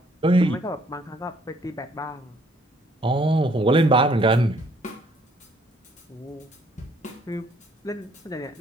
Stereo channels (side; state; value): both; normal; correlation 0.63